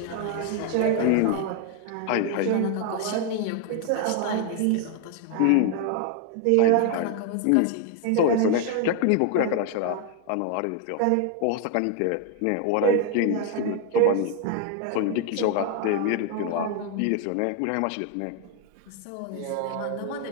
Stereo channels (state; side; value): different; both; correlation 0.01